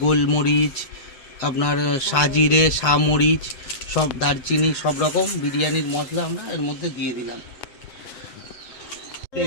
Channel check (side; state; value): right; late; 8.0 ms